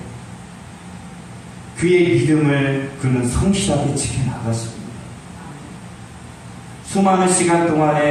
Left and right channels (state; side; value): identical; both; correlation 1.00